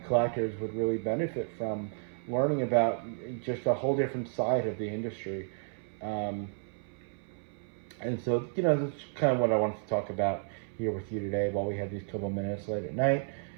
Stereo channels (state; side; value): silent; left; 56 dB below the other